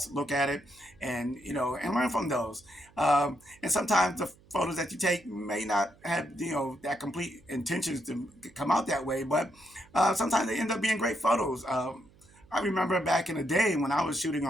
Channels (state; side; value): noise; right; hum, 28 dB below the sound